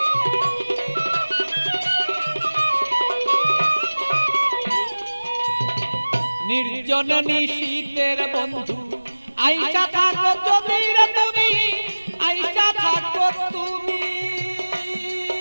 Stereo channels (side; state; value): both; inverted; correlation -1.00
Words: নির্জন নিশীতের বন্ধু আইসা থাকো যদি রে তুমি, আইসা থাকো তুমি।